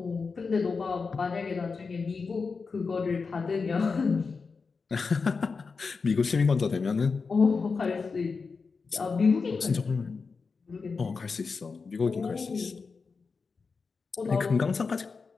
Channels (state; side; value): quieter; right; 4.8 dB